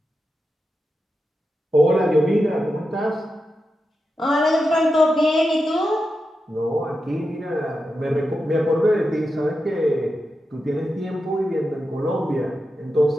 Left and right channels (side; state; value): both; normal; correlation 0.89